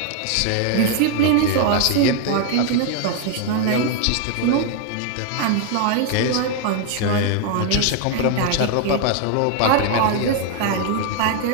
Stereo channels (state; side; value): different; both; correlation 0.00